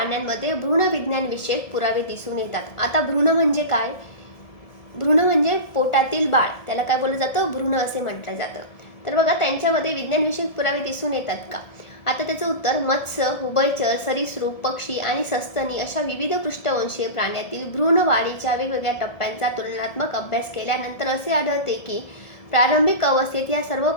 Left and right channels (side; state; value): right; late; 1.7 ms